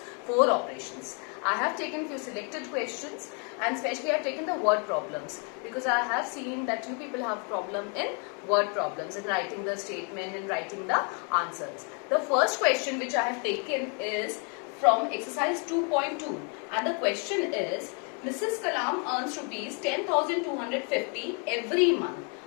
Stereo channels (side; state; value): right; quieter; 37.8 dB